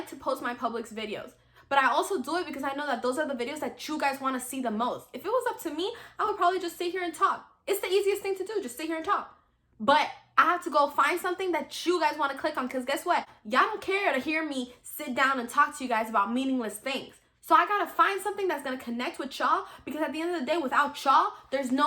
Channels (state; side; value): identical; both; correlation 1.00